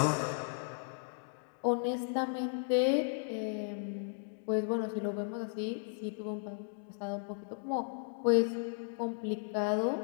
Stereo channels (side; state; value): right; silent; digital silence